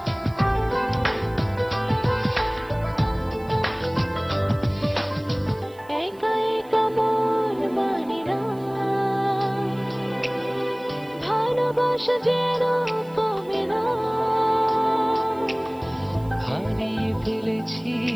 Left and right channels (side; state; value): right; noise; hiss, 28 dB below the sound